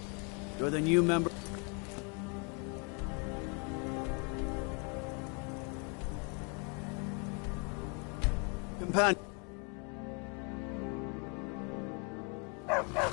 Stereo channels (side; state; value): right; quieter; 35.3 dB